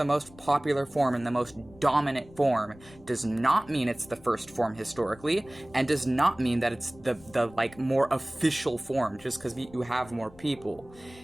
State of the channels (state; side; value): noise; left; rumble, 23 dB below the sound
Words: most popular form and the most dominant form does not mean it's the first form historically, and does not mean that it's the like more official form just because you have more people.